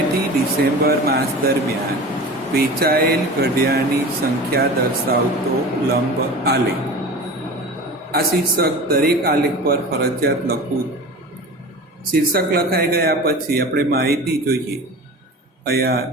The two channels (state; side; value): normal; both; correlation 0.34